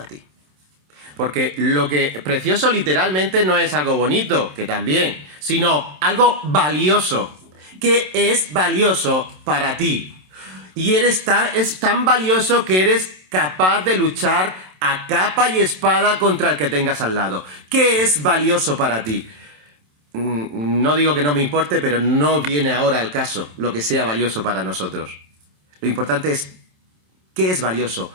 ti? Porque lo que precioso literalmente no es algo bonito, que también, sino algo valioso. ¿Qué es valioso para ti? Y es tan valioso que eres capaz de luchar a capa y espada contra el que tengas al lado. ¿Qué es valioso para ti? No digo que no me importe, pero no viene ahora al caso lo que sea valioso para nosotros. Lo importante es qué es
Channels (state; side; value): late; left; 27 ms